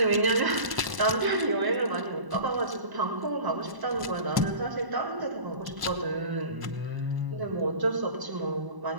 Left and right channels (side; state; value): left; late; 1.0 ms